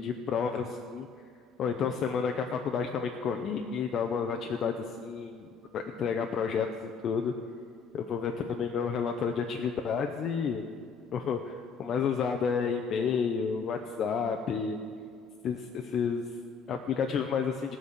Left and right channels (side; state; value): right; quieter; 5.8 dB